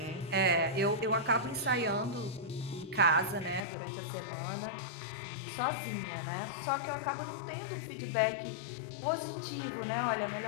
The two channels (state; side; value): drops out; right; at 3.6 s